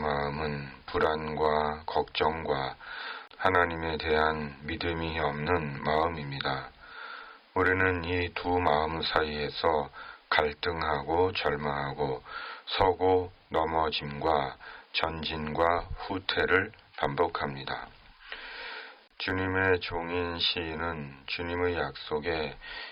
불안과 걱정과 하나님에 대한 믿음이 없는 마음입니다. 우리는 이 두 마음 사이에서 갈등하고 절망하고 서고 넘어짐과 전진과 후퇴를 반복합니다. 주님의 종인 시인은 주님의 약속에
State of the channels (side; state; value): both; identical; correlation 1.00